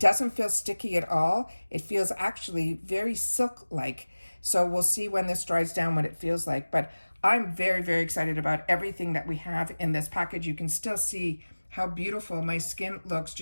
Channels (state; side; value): inverted; both; correlation -1.00